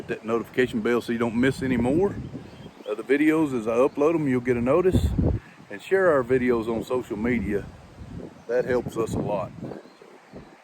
that notification bell so you don't miss any more of the videos. As I upload them, you'll get a notice. And share our videos on social media. That helps us a lot.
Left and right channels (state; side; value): identical; both; correlation 1.00